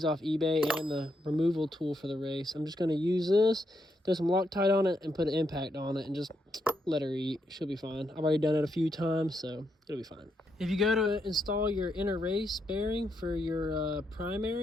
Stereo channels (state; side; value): normal; both; correlation 0.79